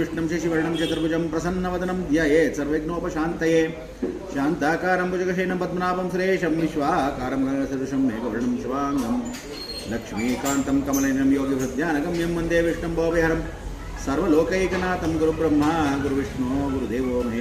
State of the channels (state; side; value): identical; both; correlation 1.00